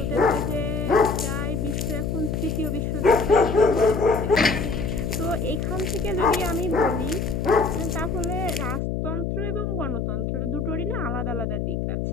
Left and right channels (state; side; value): noise; left; hum, 1 dB below the sound